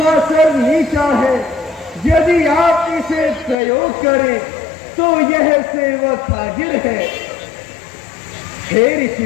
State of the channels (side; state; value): right; drops out; at 3.6 s